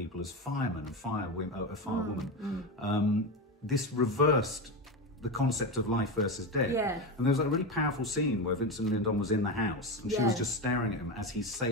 as firemen and firewoman, this reversed the concept of life versus death. Yeah. And there was a really powerful scene where Vincent Lindon was in the house and she was just staring at him as he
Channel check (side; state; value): both; normal; correlation 0.17